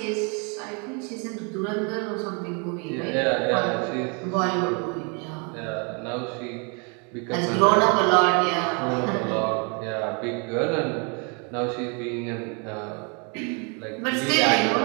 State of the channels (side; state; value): left; quieter; 34.8 dB